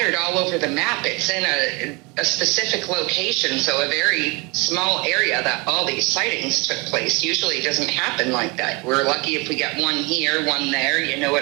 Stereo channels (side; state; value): left; quieter; 27.0 dB